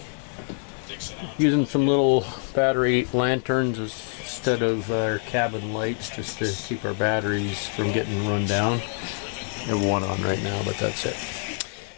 Using some little battery lanterns instead of our cabin lights, just to keep our batteries from getting run down. I have one on right now, but that's it.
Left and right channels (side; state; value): right; silent; 61 dB below the other